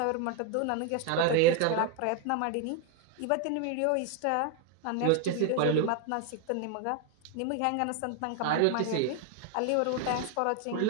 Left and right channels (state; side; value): different; both; correlation 0.01